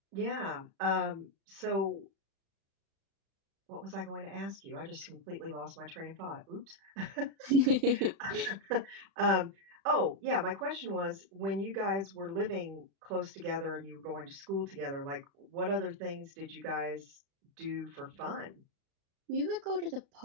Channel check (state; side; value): late; left; 36 ms